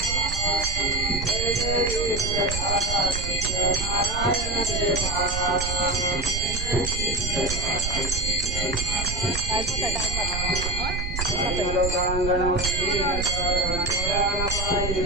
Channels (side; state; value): right; noise; rumble, 4 dB below the sound